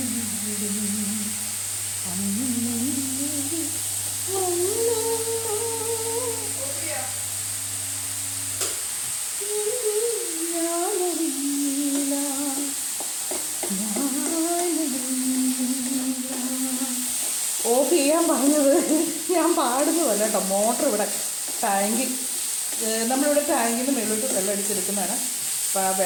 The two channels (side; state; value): both; identical; correlation 1.00